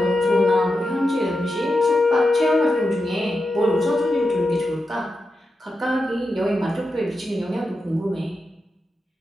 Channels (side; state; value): both; normal; correlation 0.89